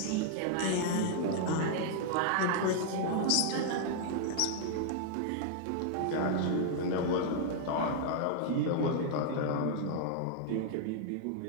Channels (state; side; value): different; both; correlation -0.01